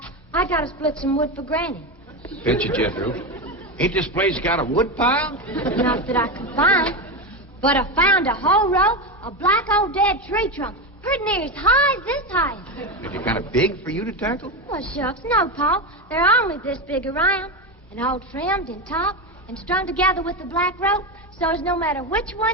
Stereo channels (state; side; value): normal; both; correlation 0.16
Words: I gotta split some wood for Granny. Betcha, Jethro. Ain't this place got a wood pile? Not that I can find, but I found a whole row of black old dead tree trunks, pretty near as high as this height. Is it kind of big for you to tackle? Well, shucks, no, Paul. They're only this big around, and all trimmed and topped and strung together with the black rope, so as no matter which